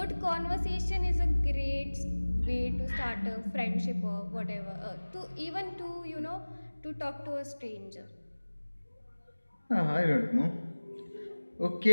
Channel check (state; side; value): inverted; both; correlation -1.00